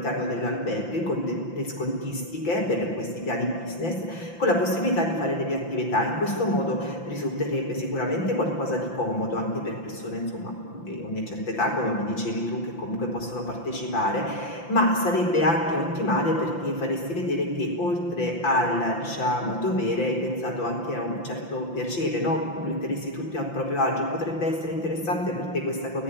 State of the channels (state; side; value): late; right; 5.9 ms